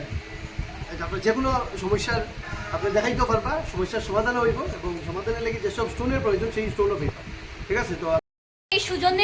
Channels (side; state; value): both; identical; correlation 1.00